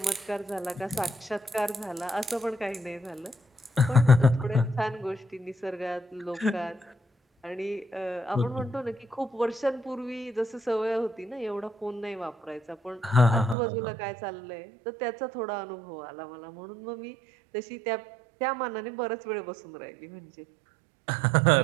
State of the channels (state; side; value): drops out; left; at 13.6 s